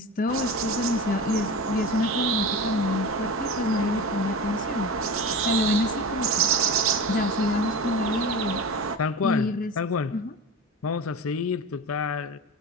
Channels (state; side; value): normal; both; correlation 0.29